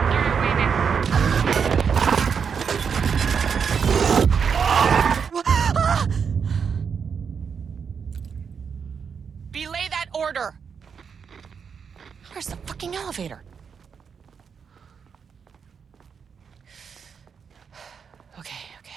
Belay that order. Where's the fucking elevator? Okay.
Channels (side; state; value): left; quieter; 6.5 dB